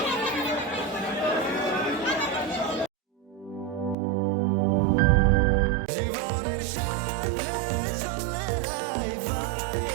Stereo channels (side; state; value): left; drops out; at 4.0 s